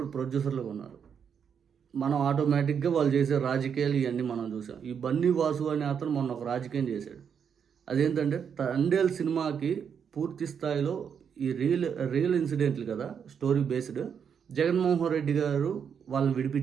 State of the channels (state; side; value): quieter; left; 7.3 dB